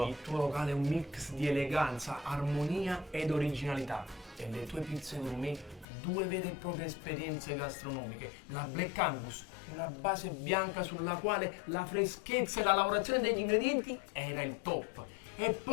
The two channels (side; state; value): right; drops out; at 5.9 s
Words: Il tuo locale è un mix di eleganza, armonia ed originalità. E le tue pizze gourmet, due vere e proprie esperienze gastronomiche. La Black Angus, una base bianca sulla quale la freschezza e la lavorazione degli ingredienti era il top. E